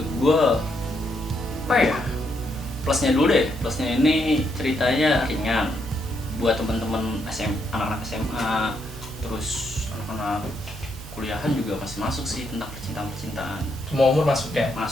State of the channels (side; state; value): right; noise; hum, 14 dB below the sound